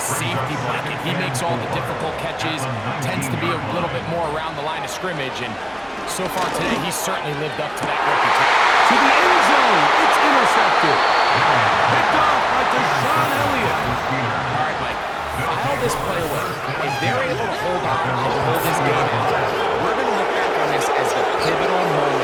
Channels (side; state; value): both; identical; correlation 1.00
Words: safety blanket. He makes all the difficult catches, tends to be a little bit more around the line of scrimmage, and so far today, he's certainly lived up to that reputation. To the end zone, it's intercepted. Picked off by Deshaun Elliott. All right, Mike, file this play away. If they're able to hold on and hold this game out, we're going to look back on this as the pivotal